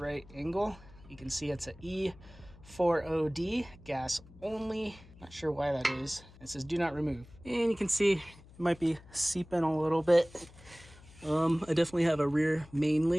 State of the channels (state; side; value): noise; left; hum, 22 dB below the sound